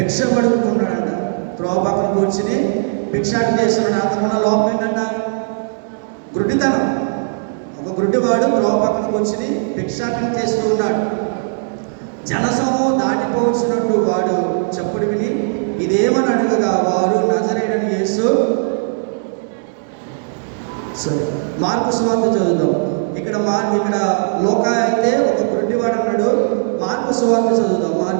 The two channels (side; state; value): left; silent; digital silence